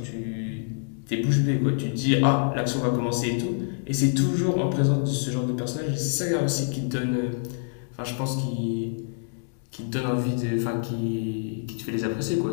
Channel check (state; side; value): silent; right; digital silence